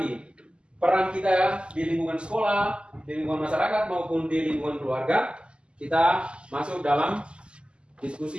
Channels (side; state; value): left; late; 0.051 ms